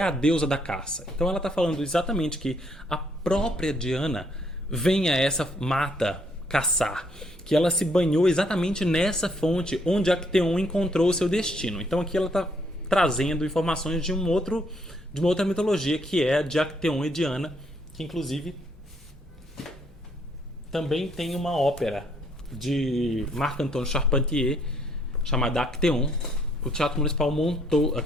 a deusa da caça. Então ela está falando exatamente que a própria Diana vem a essa mata caçar, que ela se banhou exatamente nessa fonte onde Acteon encontrou o seu destino. Então aqui ela está trazendo informações de uma outra mitologia, que é a de Acteon e Diana, que inclusive também tem uma ópera de Marc-Antoine Charpentier chamada Acteon. O Teatro Municipal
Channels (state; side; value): normal; both; correlation 0.69